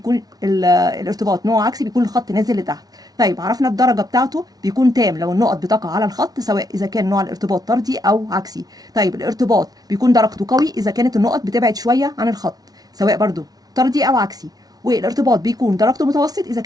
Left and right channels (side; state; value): left; late; 0.19 ms